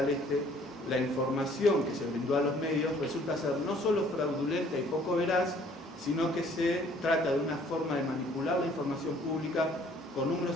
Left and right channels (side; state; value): both; normal; correlation 0.58